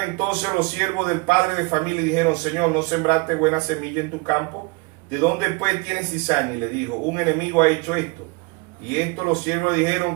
entonces los siervos del padre de familia y dijeron, Señor, ¿no sembraste buena semilla en tu campo? ¿De dónde pues tienes cizaña? Y le dijo, un enemigo ha hecho esto. Y esto los siervos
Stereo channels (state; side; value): quieter; left; 27.4 dB